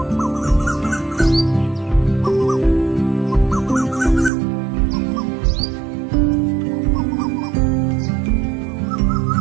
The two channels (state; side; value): drops out; left; at 4.3 s